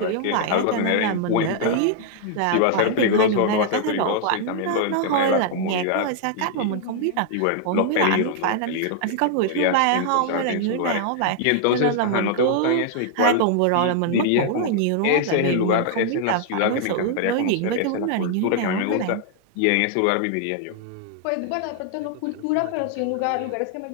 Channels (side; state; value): both; different; correlation 0.00